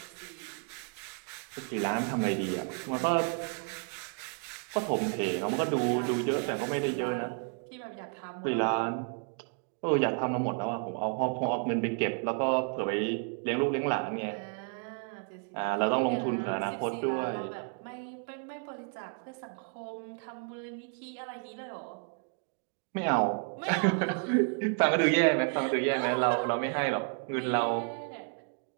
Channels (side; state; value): left; quieter; 39.5 dB